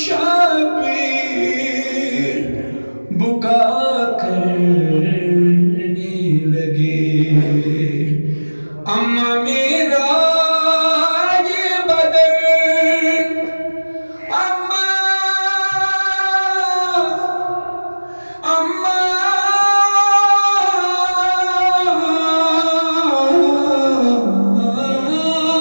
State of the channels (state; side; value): inverted; both; correlation -1.00